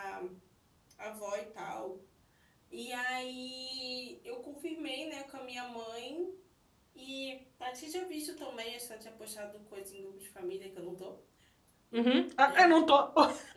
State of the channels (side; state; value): both; identical; correlation 1.00